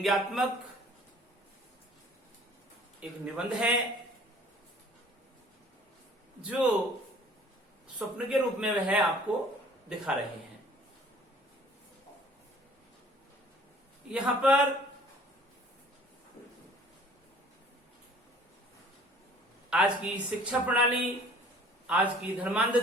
एक निबंध है जो स्वप्न के रूप में वह आपको दिखा रहे हैं। यहां पर आज की शिक्षा प्रणाली, आज की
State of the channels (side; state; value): both; normal; correlation 0.52